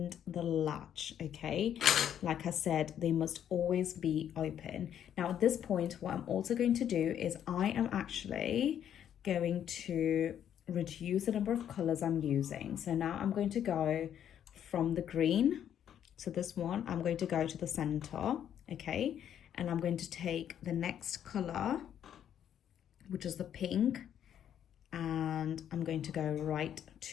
the latch, okay? Like I said, they must always be open. Now at this point, what I'm also going to do is I am actually going to reduce the number of colors I'm using. So now I'm going to go from the green, so this one, I'm going to go to the center, okay? And I'm going to take the next color, which is the pink, and I'm going to go right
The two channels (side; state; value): right; quieter; 9.7 dB